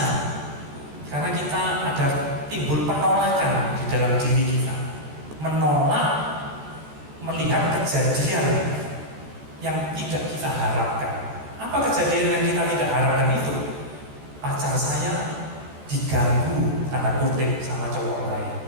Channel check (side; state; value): left; late; 14 ms